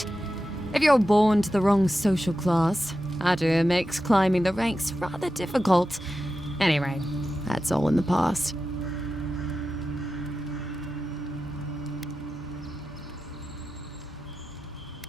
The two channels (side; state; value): both; normal; correlation 0.92